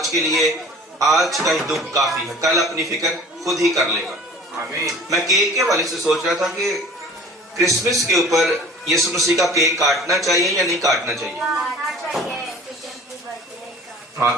کے لیے آج کا ہی دکھ کافی ہے, کل اپنی فکر خود ہی کر لے گا. میں کیک کے والے سے سوچ رہا تھا کہ کرسمس کے اوپر یسوع مسیح کا کیک کاٹنا چاہیے یا نہیں کاٹنا چاہیے. ہاں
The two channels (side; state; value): both; normal; correlation 0.46